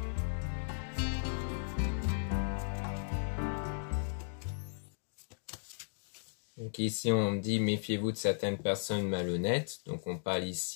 Donc ici, on dit méfiez-vous de certaines personnes malhonnêtes. Donc on parle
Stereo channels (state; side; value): silent; right; digital silence